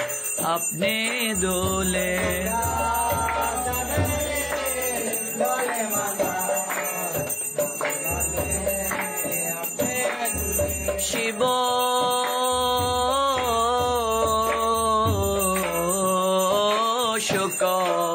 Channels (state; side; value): identical; both; correlation 1.00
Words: আপনি দোলে শিব শুক